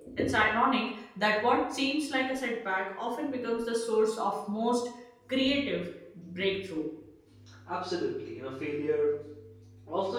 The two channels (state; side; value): identical; both; correlation 1.00